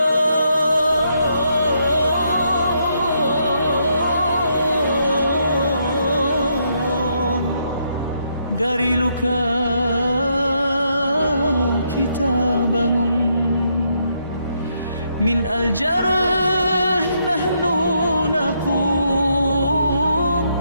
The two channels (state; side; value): inverted; both; correlation -0.76